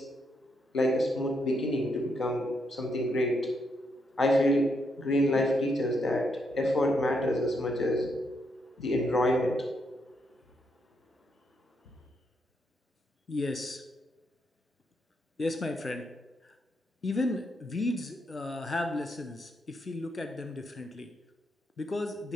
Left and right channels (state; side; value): normal; both; correlation 0.78